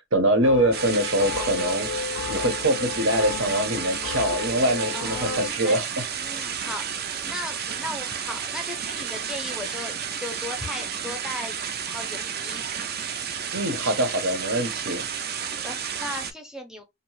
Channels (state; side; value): normal; both; correlation -0.16